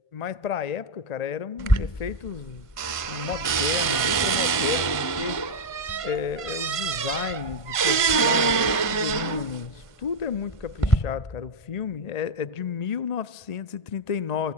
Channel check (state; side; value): late; right; 1.5 ms